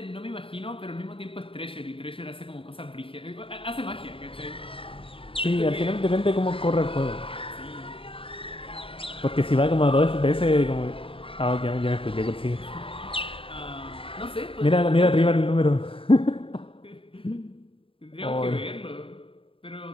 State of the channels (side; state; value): right; late; 0.26 ms